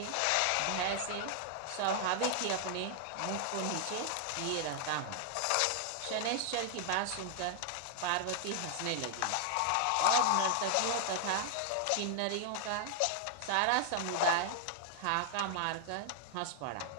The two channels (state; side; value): different; both; correlation 0.00